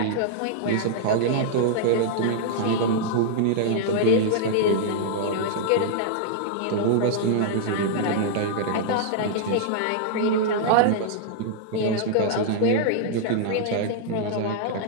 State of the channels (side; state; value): both; different; correlation -0.01